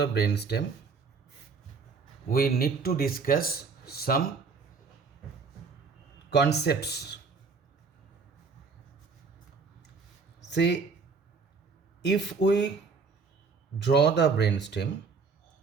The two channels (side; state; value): left; quieter; 4.9 dB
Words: brainstem, we need to discuss some concepts. Say, if we draw the brainstem